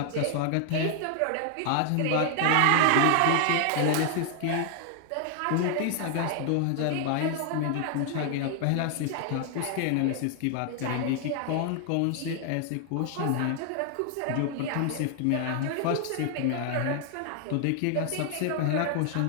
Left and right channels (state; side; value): different; both; correlation 0.00